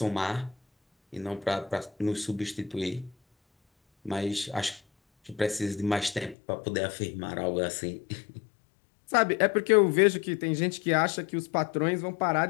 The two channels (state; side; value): drops out; right; at 6.4 s